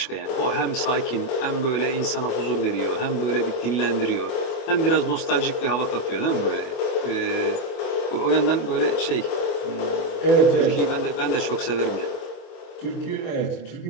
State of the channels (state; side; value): late; right; 24 ms